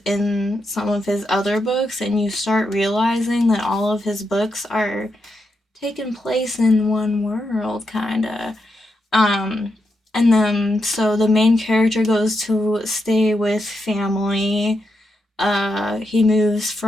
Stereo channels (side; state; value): both; normal; correlation 0.84